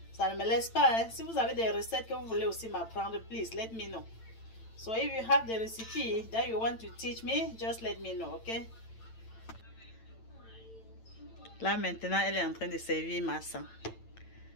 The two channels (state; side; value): late; right; 8.9 ms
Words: Ça ne me laisse pas, hein. Si vous avez des recettes que vous voulez aussi m'apprendre, please let me know. So if you have the recipe that you want to teach me, just let me know, okay? Là maintenant, elle est en train de servir massa.